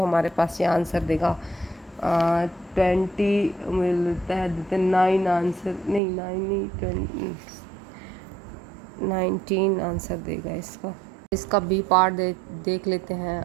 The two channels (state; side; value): drops out; left; at 6.0 s